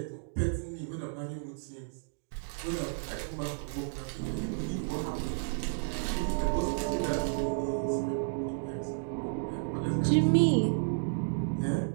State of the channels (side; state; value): left; silent; digital silence